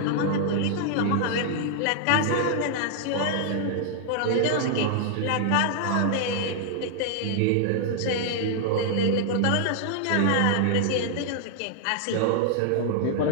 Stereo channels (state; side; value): different; both; correlation 0.00